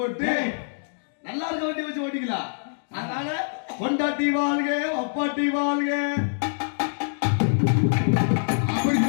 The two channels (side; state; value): right; silent; digital silence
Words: போட்டு நல்லா இருக்க வண்டி வச்சு ஓட்டிக்கலாம். அதனால பொண்டாட்டி வாழ்க அப்பாட்டி வாழ்க அப்படி